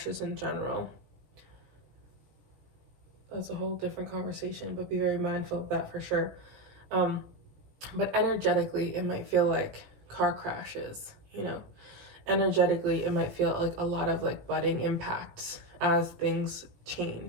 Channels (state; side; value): late; left; 17 ms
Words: in general. That's a whole different conversation, but be very mindful of that for sure. But energetically, it might feel like car crashes, you know. Energetically, it might feel like a lot of like budding impacts as things